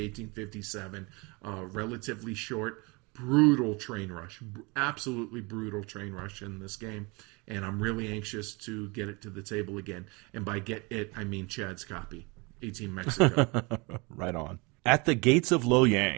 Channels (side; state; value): left; quieter; 27.5 dB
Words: relatively short, brutal train rush. Absolutely brutal train rush in this game. And I'm really anxious to get it to the table again. And by get it, I mean Chad's copy, 18 Mexico. Right on. At the Gates of